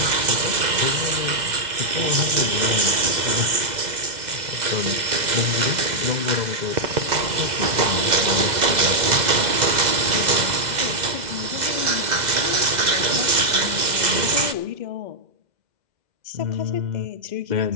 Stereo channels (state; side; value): late; left; 2.0 ms